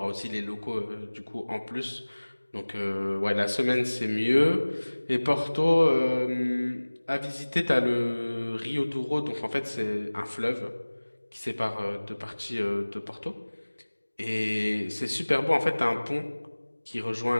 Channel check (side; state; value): both; inverted; correlation -1.00